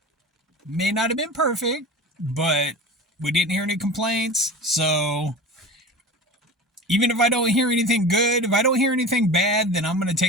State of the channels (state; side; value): normal; both; correlation 0.33